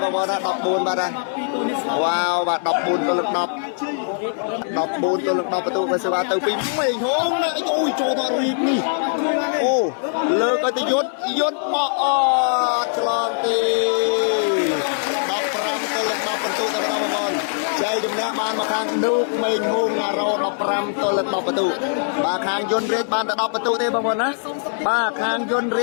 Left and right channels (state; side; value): silent; right; 65 dB below the other